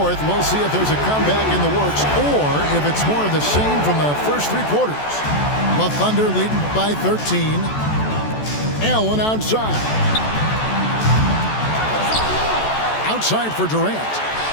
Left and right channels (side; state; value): right; late; 14 ms